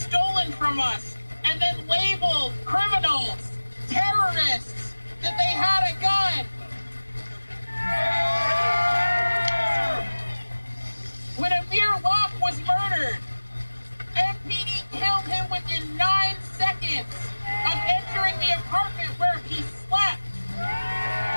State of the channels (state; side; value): inverted; both; correlation -1.00